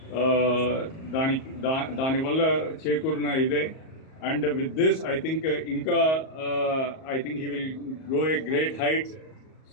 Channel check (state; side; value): late; right; 38 ms